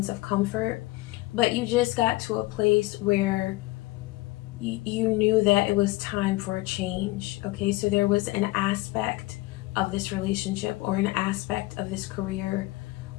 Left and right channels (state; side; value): quieter; right; 20.5 dB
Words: of comfort, but you just got to a place where you knew that it was time for a change. Okay, so there was an aspect of this relationship or an aspect of this career